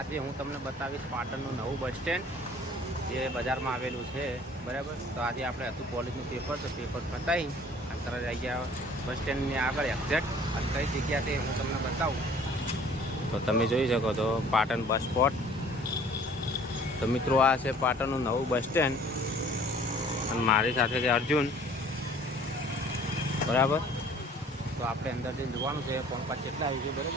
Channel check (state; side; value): normal; both; correlation 0.52